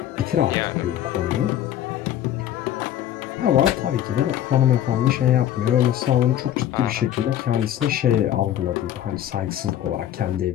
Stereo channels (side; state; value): right; quieter; 11.5 dB